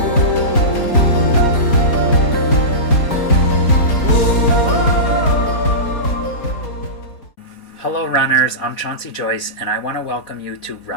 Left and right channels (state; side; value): late; right; 4.2 ms